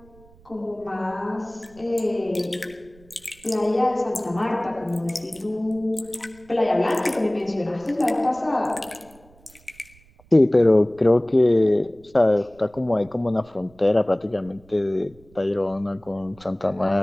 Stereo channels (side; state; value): right; noise; rumble, 27 dB below the sound